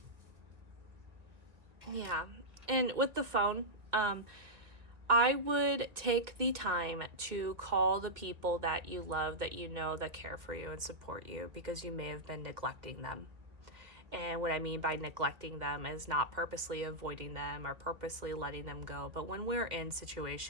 Yeah. And with the phone, I would take the time to call the people that you love, that you know, that care for you and support you, because you may have been neglecting them. And what I mean by neglecting them is not purposely avoiding them or purposely letting them go. But when we're in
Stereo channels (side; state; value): left; late; 1.9 ms